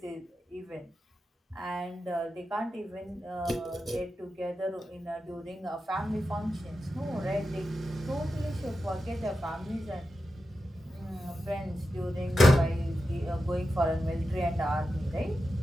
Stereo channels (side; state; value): both; normal; correlation 0.90